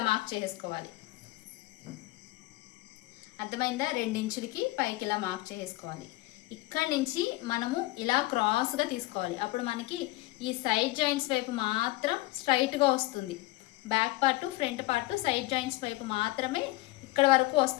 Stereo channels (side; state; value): right; quieter; 20.1 dB